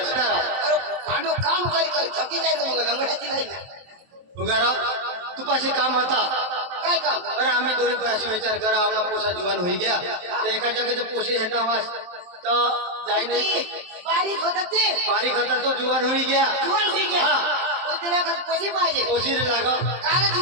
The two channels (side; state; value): left; late; 23 ms